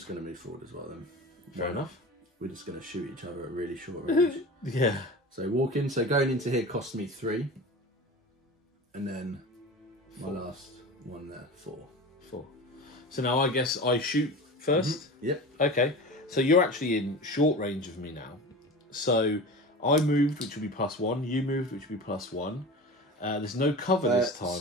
going to move forward as well then. Fair enough. We're just going to shoot each other at really short range. Yeah. So walking. So going into here costs me 3, and then. 4. My last one there, 4. So now I guess I shoot first? Yep. Okay. So you're actually in short range of me now. So I moved, which will be +1. You moved, which will be +1. There's no cover this time.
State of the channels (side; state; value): both; normal; correlation 0.32